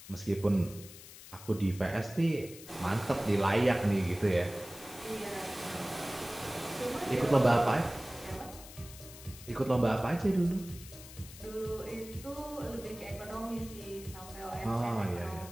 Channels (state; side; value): noise; left; hiss, 16 dB below the sound